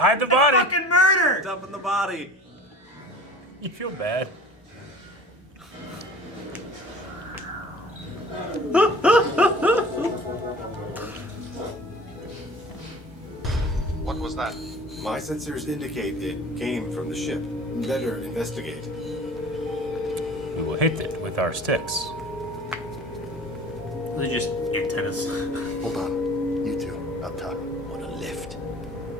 the body. Fucking murder! Dumping the body. You feel bad. What was that? My sensors indicate it came from the ship. Better investigate. We will hit it with our sticks. They're just antennas. Hold on. You two, up top. On a lift.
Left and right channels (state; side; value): normal; both; correlation 0.42